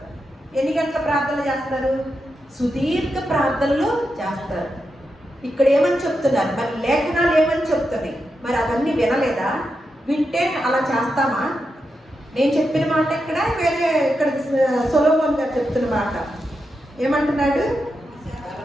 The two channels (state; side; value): normal; both; correlation 0.87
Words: ఎన్ని గంటల ప్రార్థన చేస్తారు? సుదీర్ఘ ప్రార్థనలు చేస్తారు. ఇక్కడ ఏమని చెప్తున్నారు? మరి లేఖనాలు ఏమని చెప్తున్నాయి? మరి అవన్నీ వినలేదా? వింటే అలా చేస్తామా? నేను చెప్పిన మాట ఇక్కడ వేరే, ఇక్కడ సొలొమోన్ గారు చెప్తున్న మాట ఏమంటున్నాడు?